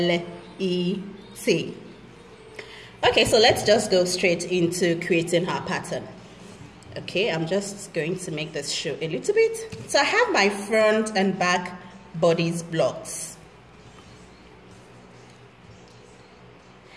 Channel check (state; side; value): identical; both; correlation 1.00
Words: Okay, so let's just go straight into creating our pattern. Okay, I'm just going to make this show a little bit. So I have my front and back bodice blocks.